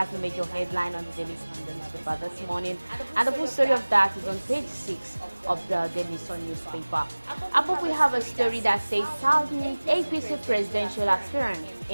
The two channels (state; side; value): inverted; both; correlation -1.00